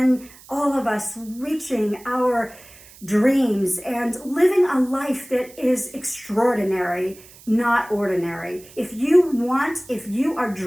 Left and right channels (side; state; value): right; noise; hiss, 22 dB below the sound